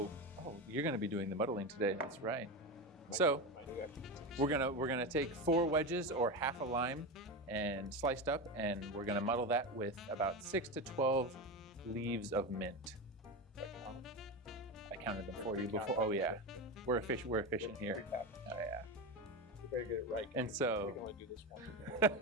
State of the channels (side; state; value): both; normal; correlation 0.19